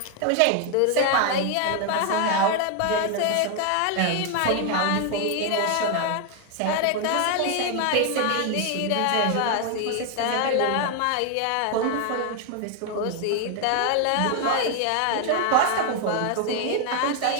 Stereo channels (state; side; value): different; both; correlation 0.00